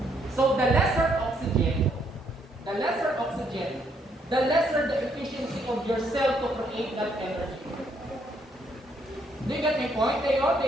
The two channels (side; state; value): both; normal; correlation 0.71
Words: So the lesser oxygen, the lesser the efficiency of your cell to create that energy. Do you get my point?